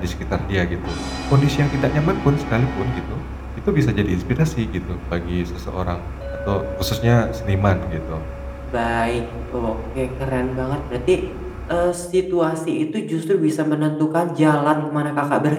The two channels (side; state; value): both; identical; correlation 1.00